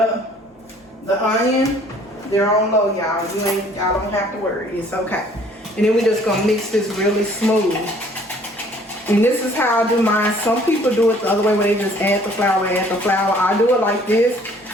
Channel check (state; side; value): normal; both; correlation 0.57